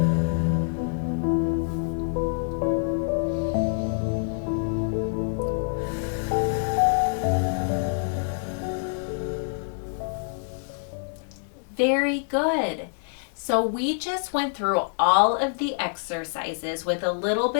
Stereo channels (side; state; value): right; silent; digital silence